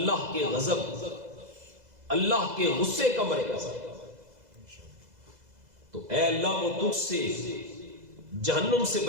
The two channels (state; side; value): late; left; 2.0 ms